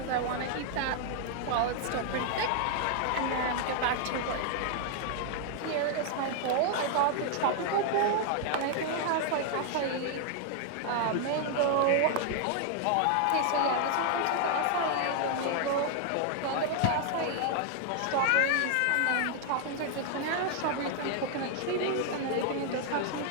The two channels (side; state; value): both; different; correlation 0.00